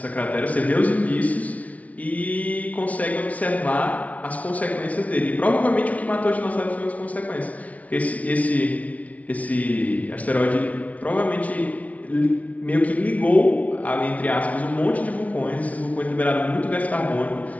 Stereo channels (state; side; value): late; right; 0.069 ms